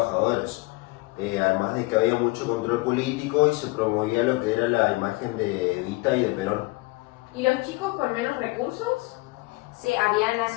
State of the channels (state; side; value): quieter; right; 23.6 dB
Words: Además de que había mucho control político y se promovía lo que era la imagen de Evita y de Perón. ¿Y los chicos con menos recursos? Se habían